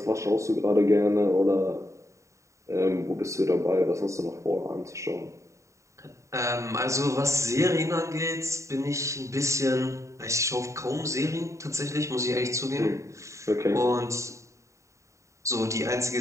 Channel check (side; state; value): left; late; 0.14 ms